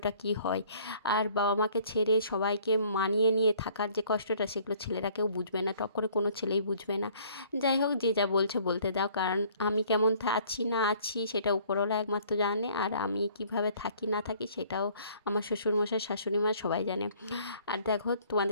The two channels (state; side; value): inverted; both; correlation -0.57